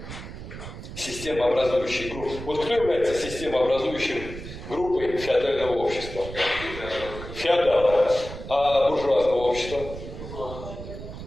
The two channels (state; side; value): noise; right; rumble, 11 dB below the sound